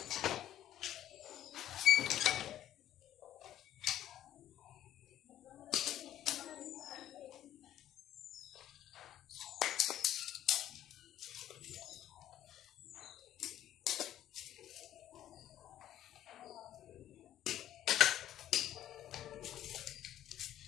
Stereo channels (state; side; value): quieter; right; 12.2 dB